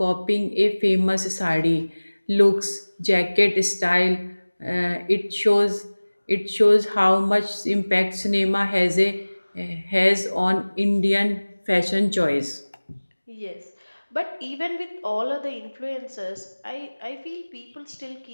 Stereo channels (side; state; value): both; inverted; correlation -1.00